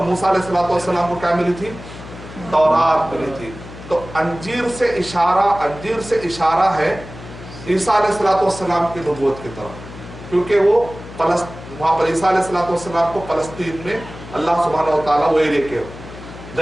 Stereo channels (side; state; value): left; noise; hum, 15 dB below the sound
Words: موسیٰ علیہ السلام کو کیا ملی تھی؟ تورات ملی تھی۔ تو انجیر سے اشارہ ہے عیسیٰ علیہ السلام کی نبوت کی طرف، کیونکہ وہ وہاں پر عیسیٰ علیہ السلام کو فلسطین میں اللہ سبحانہ وتعالیٰ وہ ایریا کے۔